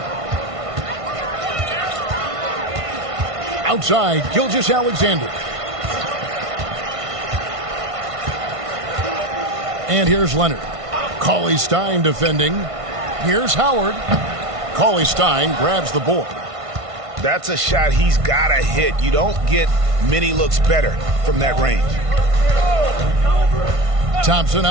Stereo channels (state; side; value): late; left; 1.5 ms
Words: Outside, Gilgeous-Alexander. And here's Leonard. Cauley-Stein defending. Here's Howard. Cauley-Stein grabs the board. That's a shot he's got to hit. You don't get many looks better from that range. Thompson